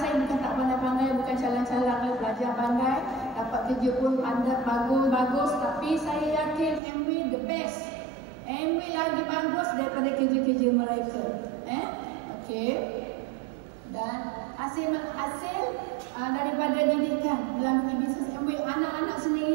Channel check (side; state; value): left; drops out; at 6.8 s